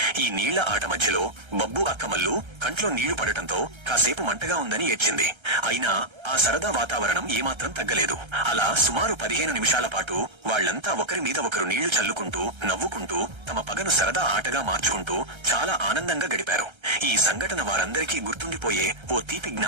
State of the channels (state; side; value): late; left; 1.3 ms